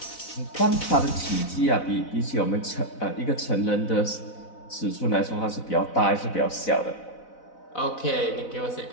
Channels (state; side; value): late; right; 4.0 ms